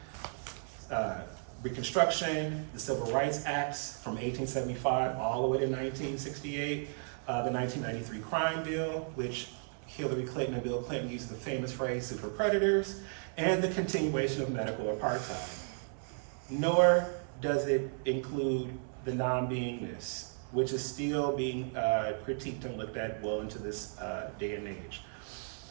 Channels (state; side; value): silent; left; 55 dB below the other